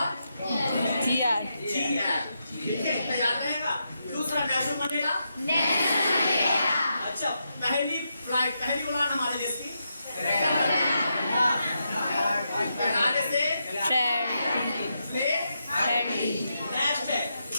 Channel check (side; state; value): both; inverted; correlation -0.84